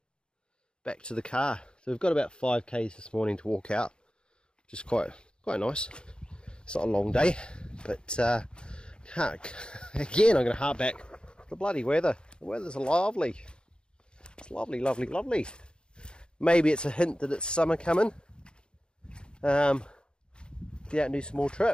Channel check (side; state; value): right; late; 0.051 ms